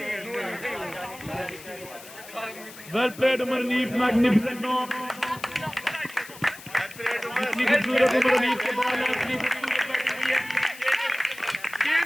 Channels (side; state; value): left; noise; hiss, 17 dB below the sound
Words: well played Umar Hanif magnificent knock इतनी खूबसूरत उमर अनीफ के ball है इतनी खूबसूरत बैटिंग हुई है Kane